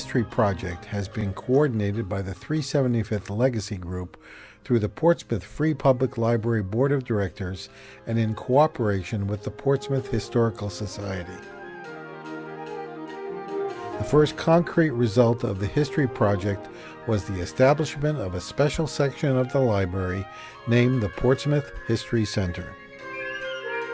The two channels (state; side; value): identical; both; correlation 1.00